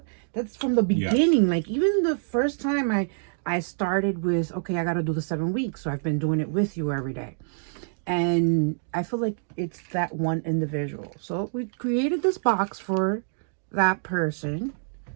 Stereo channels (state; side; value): silent; left; digital silence